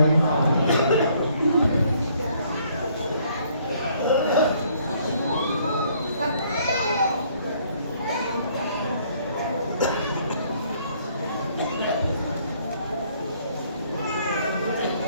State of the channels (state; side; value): inverted; both; correlation -0.64